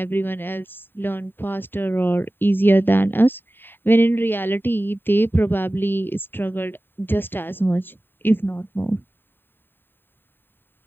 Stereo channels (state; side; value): late; right; 0.096 ms